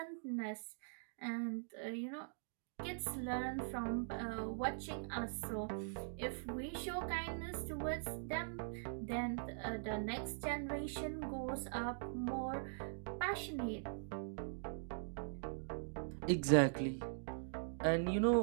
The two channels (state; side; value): silent; left; digital silence